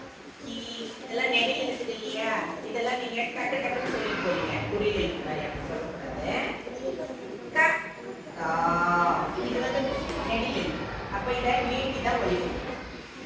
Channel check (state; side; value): identical; both; correlation 1.00